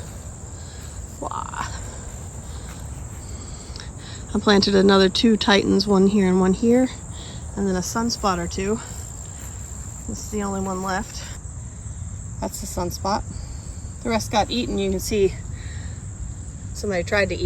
Wow. I planted another two Titans, one here and one here, and then a sunspot or two. This is the only one left. That's the sunspot. The rest got eaten. You can see somebody tried to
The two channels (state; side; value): identical; both; correlation 1.00